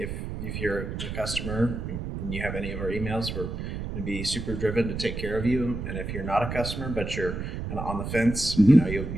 you're a customer and you have any of our emails, we're going to be super driven to take care of you. And if you're not a customer but you're kind of on the fence,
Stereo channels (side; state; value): right; noise; rumble, 5 dB below the sound